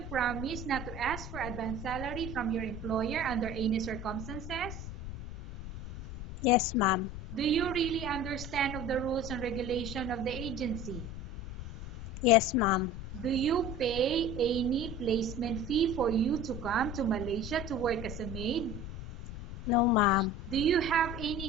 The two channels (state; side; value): noise; left; rumble, 9 dB below the sound